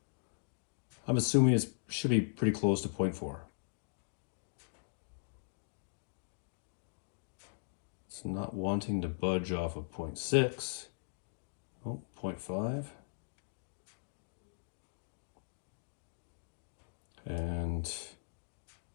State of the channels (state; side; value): silent; right; digital silence